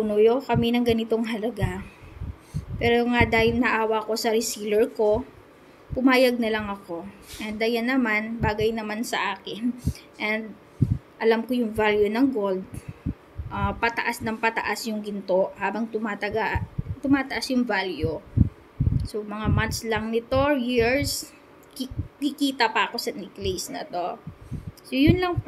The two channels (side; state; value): both; identical; correlation 1.00